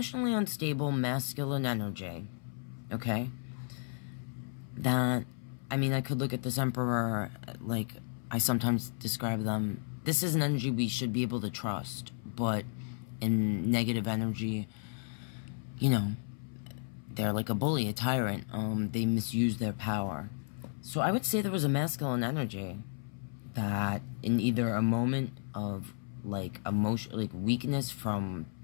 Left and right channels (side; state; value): right; silent; 55 dB below the other